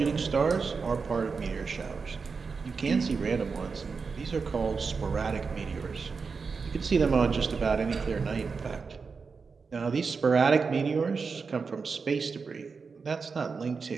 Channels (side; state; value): left; quieter; 5.0 dB